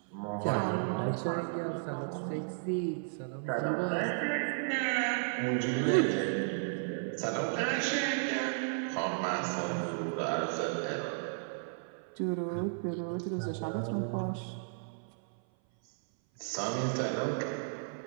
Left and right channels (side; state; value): left; silent; 55 dB below the other